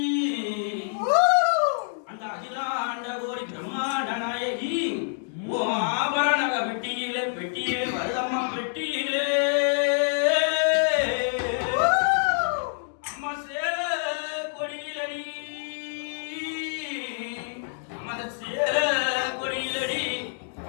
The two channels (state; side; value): silent; right; digital silence